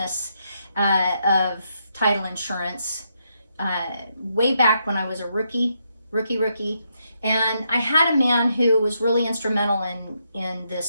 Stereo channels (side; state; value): both; inverted; correlation -0.79